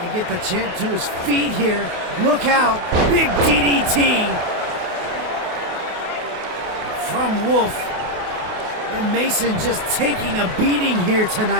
to get the champ to his feet here. Look out. Big DDT from Wolf. And Mason just taking a beating here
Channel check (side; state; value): left; late; 28 ms